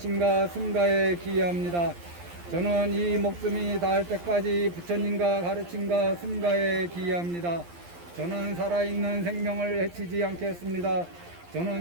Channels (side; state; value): left; late; 11 ms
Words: 승가에 기여합니다. 저는 이 목숨이 닿을 때까지 부처님과 가르침과 승가에 기여합니다. 저는 살아있는 생명을 해치지 않겠습니다.